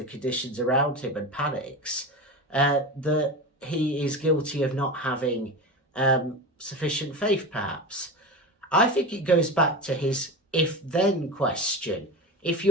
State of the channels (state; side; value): normal; both; correlation 0.26